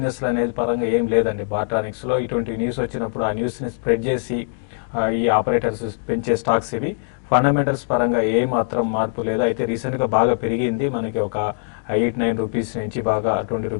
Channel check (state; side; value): silent; right; digital silence